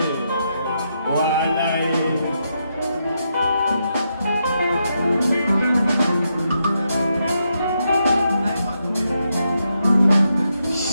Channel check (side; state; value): both; inverted; correlation -0.82